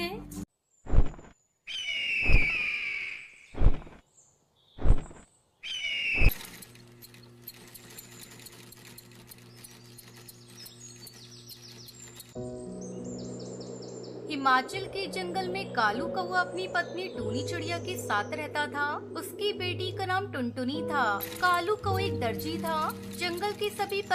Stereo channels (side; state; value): both; identical; correlation 1.00